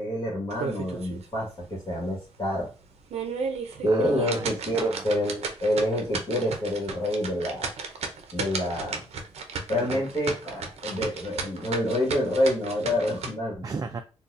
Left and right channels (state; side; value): normal; both; correlation 0.65